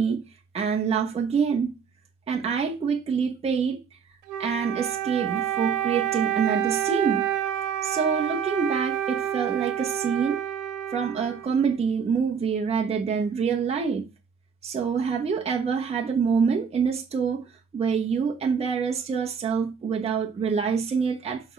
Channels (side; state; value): left; quieter; 6.4 dB